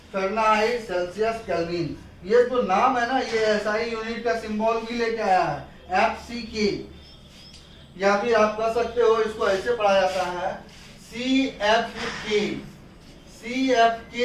फ़ारेनहाइट, सेल्सियस, केल्विन। ये जो नाम है ना, ये एसआई यूनिट का सिंबल भी लेके आया है FCK, या फिर आप कह सकते हो इसको ऐसे पढ़ा जाता है CFK।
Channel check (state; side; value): identical; both; correlation 1.00